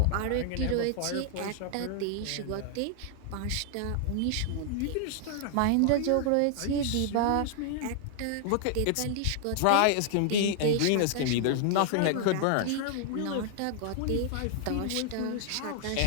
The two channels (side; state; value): both; different; correlation 0.00